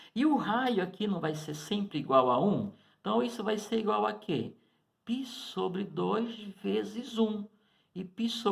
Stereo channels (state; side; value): identical; both; correlation 1.00